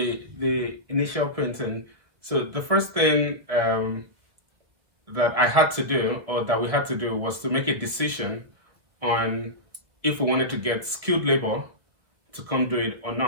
initial painting. So the first thing that I had to do, or that we had to do, was to make a decision on if we wanted to get skilled labor to come do it or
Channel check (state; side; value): late; left; 1.4 ms